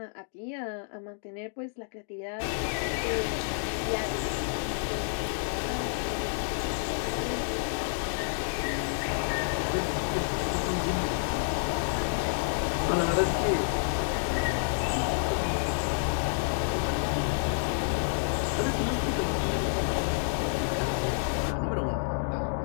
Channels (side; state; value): right; silent; digital silence